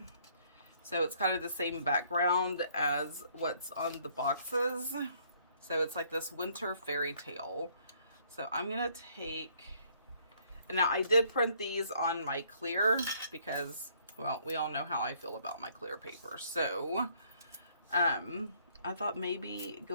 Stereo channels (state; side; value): inverted; both; correlation -0.64